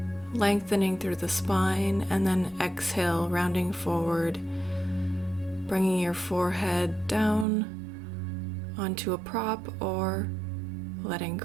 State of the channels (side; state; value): left; drops out; at 7.5 s